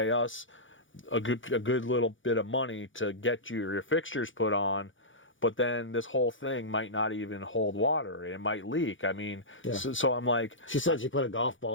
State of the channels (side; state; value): right; late; 0.56 ms